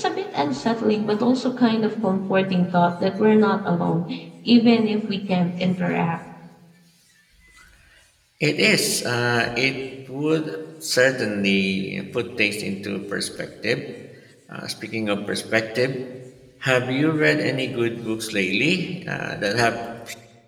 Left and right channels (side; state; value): both; identical; correlation 1.00